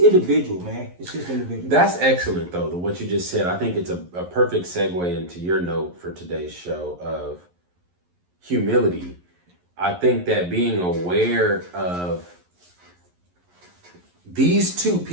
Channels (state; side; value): late; left; 11 ms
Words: man. It's just individual. That's excellent, though, what you just said. I think it's a perfect segue into your note for today's show of humility. I think that being aware of these two